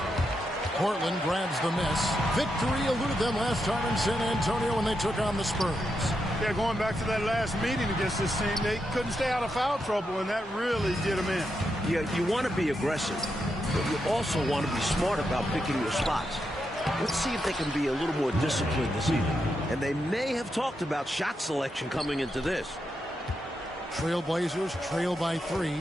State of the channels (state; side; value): normal; both; correlation 0.84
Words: Portland grabs the miss. Victory eluded them last time in San Antonio when they took on the Spurs. Yeah, going back to that last meeting against this team, they couldn't stay out of foul trouble, and that really did them in. Yeah, you want to be aggressive, but you also want to be smart about picking your spots. Let's see if they can be a little more disciplined this evening. And they may have talked about shot selection coming into this. Trailblazers trail by 3.